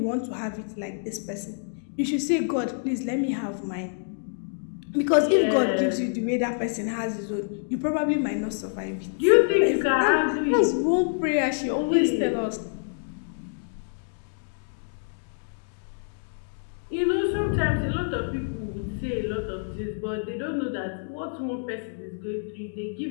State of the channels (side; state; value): right; silent; digital silence